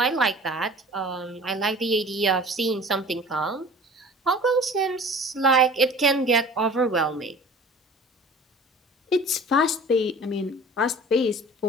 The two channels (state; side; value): normal; both; correlation 0.44